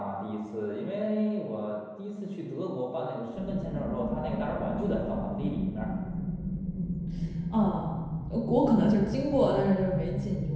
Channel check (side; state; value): both; identical; correlation 1.00